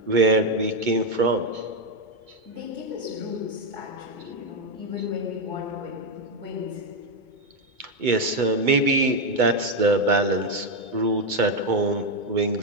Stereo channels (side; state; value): left; late; 2.2 ms